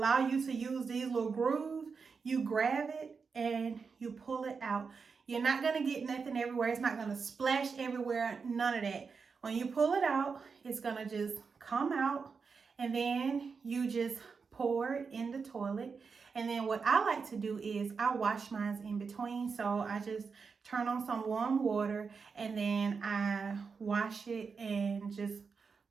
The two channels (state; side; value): quieter; left; 5.3 dB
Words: you to use these little grooves. You grab it and you pull it out. You're not gonna get nothing everywhere. It's not gonna splash everywhere, none of that. When you pull it out, it's gonna just come out, and then you just pour it in the toilet. And then what I like to do is I wash mine in between. So I just turn on some warm water and then I wash it, and just